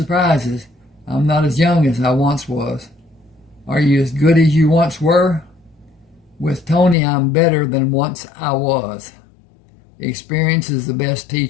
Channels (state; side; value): drops out; right; at 7.0 s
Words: I'm not as young as I once was. Are you as good as you once were? With Tony, I'm better than once I was. Experience is the best